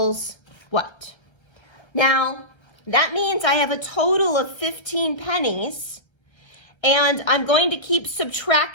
what? Now, that means I have a total of 15 pennies, and I'm going to keep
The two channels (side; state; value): right; late; 1.3 ms